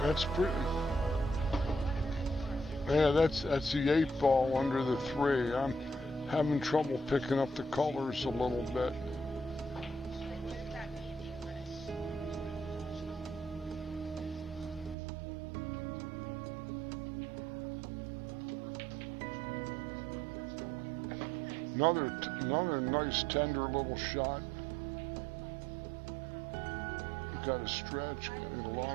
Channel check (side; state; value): left; drops out; at 15.0 s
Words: that's pretty. Yeah, that's the 8 ball under the 3. I'm having trouble picking up the colors a little bit. Another nice tender little shot. Got to stretch, get a